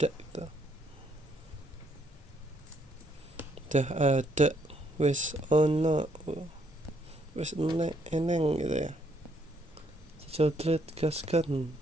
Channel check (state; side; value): normal; both; correlation 0.71